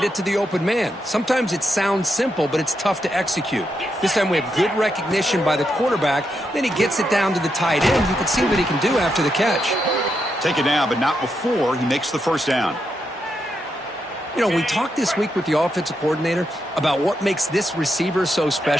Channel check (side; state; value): both; normal; correlation 0.83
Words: it to the open man. Sometimes it sounds simple, but it's tough to execute. This time we have good recognition by the quarterback. Then he gets it down to the tight end. You can see what he can do after the catch. Take it down, but not before he makes the first down. You know, we talked this week with the offensive coordinator about what makes this receiver so